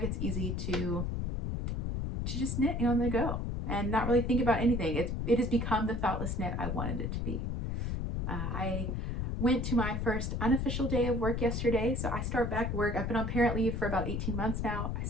It's easy to just knit on the go and not really think about anything. It has become the thoughtless knit I wanted it to be. I went to my first unofficial day of work yesterday, so I start back work. I've been on parent leave for about 18 months now. I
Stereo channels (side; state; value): left; noise; rumble, 1 dB below the sound